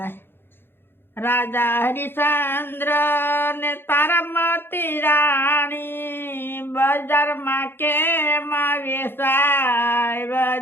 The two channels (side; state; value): right; late; 0.10 ms